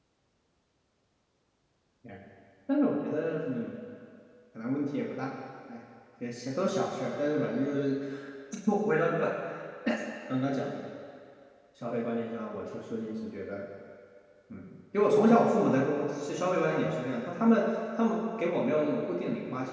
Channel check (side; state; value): both; identical; correlation 1.00